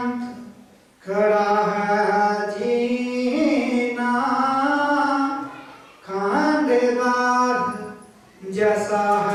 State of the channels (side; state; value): both; identical; correlation 1.00